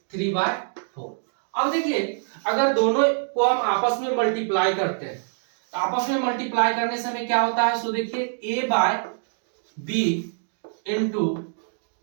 3/4। अब देखिए अगर दोनों को हम आपस में मल्टीप्लाई करते हैं तो आपस में मल्टीप्लाई करने से हमें क्या होता है, सो देखिए A by B into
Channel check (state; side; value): silent; left; digital silence